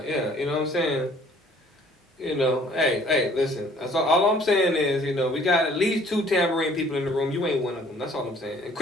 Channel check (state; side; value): normal; both; correlation 0.56